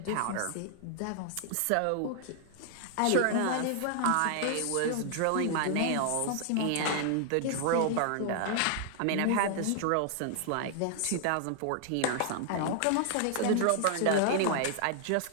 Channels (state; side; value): different; both; correlation 0.00